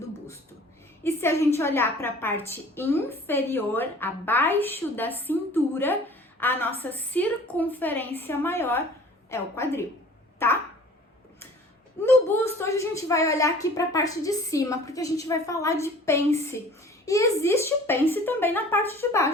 busto. E se a gente olhar para a parte inferior, abaixo da cintura, a nossa circunferência maior é o quadril, tá? No busto, hoje a gente vai olhar aqui para a parte de cima, porque a gente vai falar de pence. E existe pence também na parte de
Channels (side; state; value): both; normal; correlation 0.48